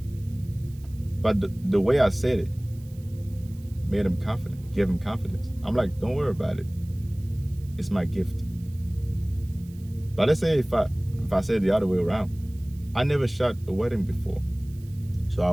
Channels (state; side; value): noise; right; hiss, 27 dB below the sound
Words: But the way I said it made him confident, gave him confidence. I'm like, don't worry about it. It's my gift. But let's say if I said the other way around, I never shot a wedding before, so I